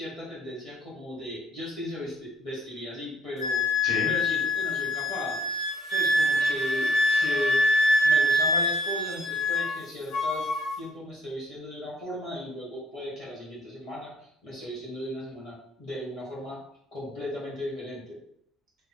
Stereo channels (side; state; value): both; normal; correlation 0.63